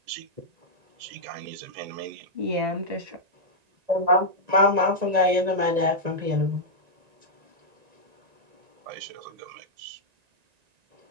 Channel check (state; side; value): late; left; 1.9 ms